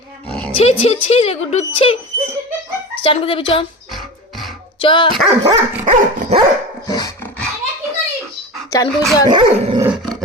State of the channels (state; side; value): normal; both; correlation 0.29